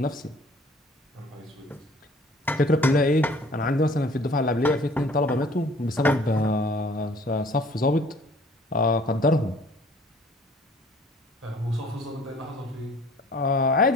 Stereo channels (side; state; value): both; normal; correlation 0.53